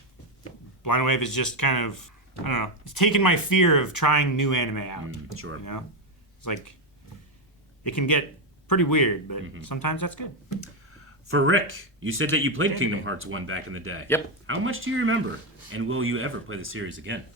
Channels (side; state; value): both; normal; correlation 0.07